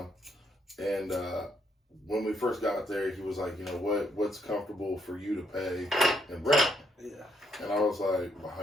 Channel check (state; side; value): normal; both; correlation 0.74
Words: and when we first got there, he was like, you know, what's comfortable for you to pay in rent? Yeah. And I was like, well, how